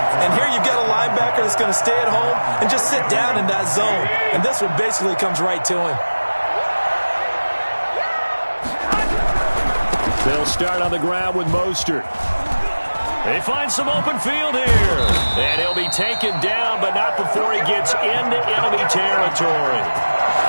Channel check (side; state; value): both; inverted; correlation -1.00